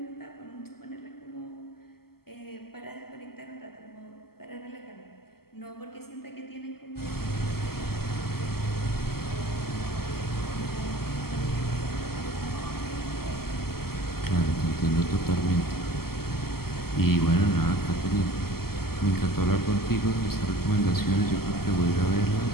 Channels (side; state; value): right; late; 0.95 ms